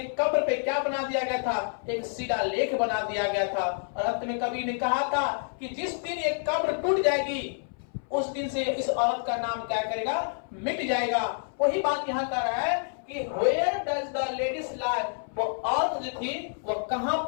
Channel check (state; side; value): silent; right; 59 dB below the other